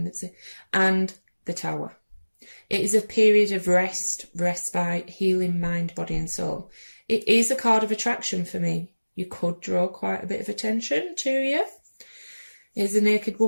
and the Tower. It is a period of rest, respite, healing mind, body and soul. It is a card of attraction for me. You could draw quite a bit of attention to you. Here's a naked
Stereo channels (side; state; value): both; inverted; correlation -1.00